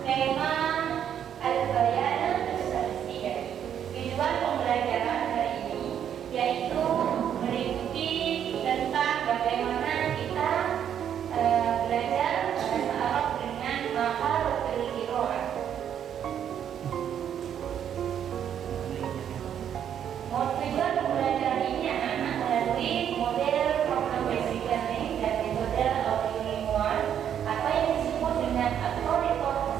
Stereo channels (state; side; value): quieter; left; 9.2 dB